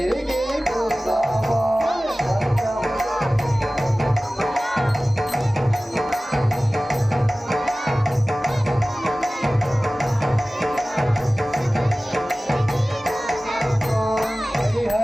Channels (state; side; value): normal; both; correlation 0.97